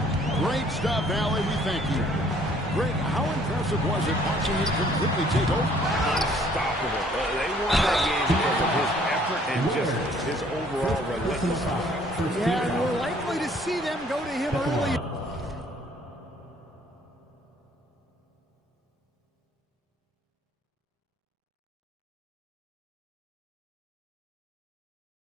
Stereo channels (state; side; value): normal; both; correlation 0.60